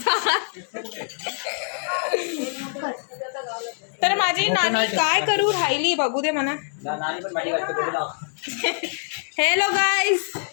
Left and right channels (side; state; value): right; silent; 62 dB below the other